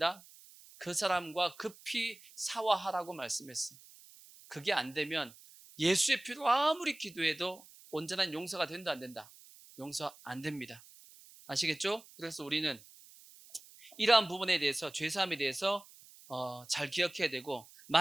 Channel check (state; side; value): noise; right; hiss, 22 dB below the sound